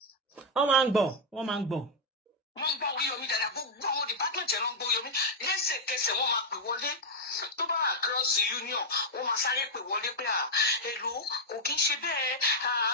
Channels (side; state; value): both; normal; correlation 0.00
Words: Wọ́n máa ń gbọ́. Wọ́n ń gbọ́ Oriyomi dáadáa gbogbo àwọn department yẹn ló ń gbọ́ Oriyomi lẹ́sẹ̀kẹsẹ̀ wọ́n máa pè wọlé tó bá across the union wọ́n máa sáré pè wọlé pé èlò kò kí ń ṣe bẹ́ẹ̀